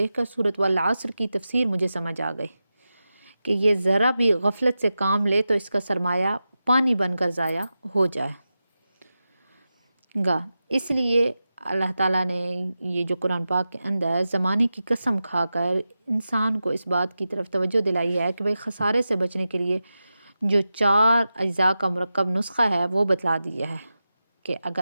کر سورۃ والعصر کی تفسیر مجھے سمجھ آ گئی کہ یہ ذرا بھی غفلت سے کام لے تو اس کا سرمایہ پانی بن کر ضائع ہو جائے گا۔ اس لیے اللہ تعالیٰ نے یہ جو قرآن پاک کے اندر زمانے کی قسم کھا کر انسان کو اس بات کی طرف توجہ دلائی ہے کہ بھائی خسارے سے بچنے کے لیے جو 4 اجزاء کا مرکب نسخہ ہے وہ بتلا دیا ہے کہ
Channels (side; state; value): both; inverted; correlation -0.92